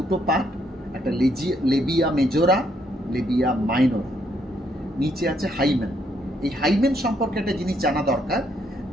পার্ট, একটা লেবিয়া মেজোরা, লেবিয়া মাইনর। নিচে আছে হাইমেন। এই হাইমেন সম্পর্কে একটা জিনিস জানা দরকার,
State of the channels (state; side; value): normal; both; correlation 0.72